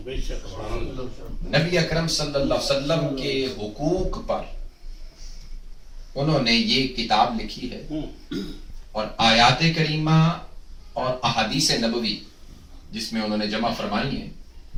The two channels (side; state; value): both; identical; correlation 1.00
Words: नबी अकरम सल्लल्लाहु अलैहि वसल्लम के हुकूक पर उन्होंने ये किताब लिखी है। और आयात करीमा और अहादीस नबवी जिसमें उन्होंने जमा फरमाई है,